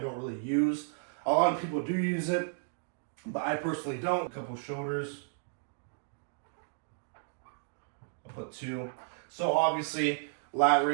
really use. A lot of people do use it, but I personally don't. A couple shoulders. I'll put 2. So obviously, lat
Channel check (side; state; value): left; silent; digital silence